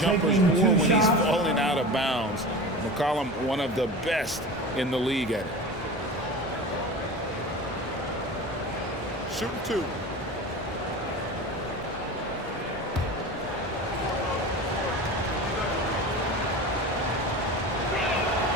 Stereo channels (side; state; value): both; normal; correlation 0.32